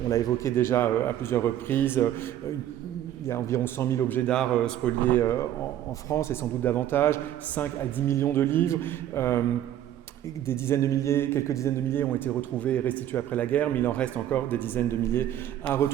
On l'a évoqué déjà à plusieurs reprises, il y a environ 100 000 objets d'art spoliés en France, et sans doute davantage, 5 à 10 millions de livres. Quelques dizaines de milliers ont été retrouvés et restitués après la guerre, mais il en reste encore des dizaines de milliers à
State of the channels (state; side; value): quieter; left; 11.7 dB